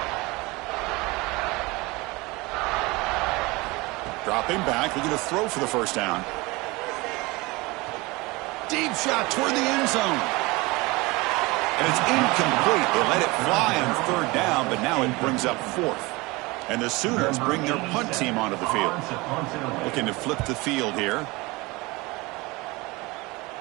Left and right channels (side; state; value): left; quieter; 23.5 dB